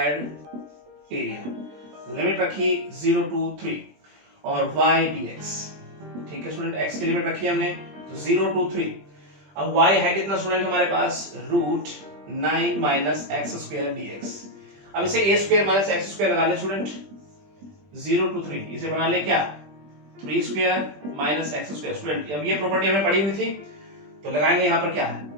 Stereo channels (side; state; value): left; late; 20 ms